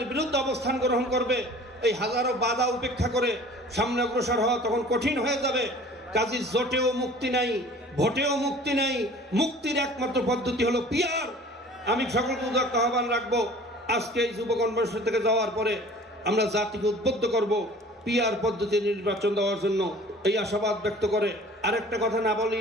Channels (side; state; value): both; normal; correlation 0.47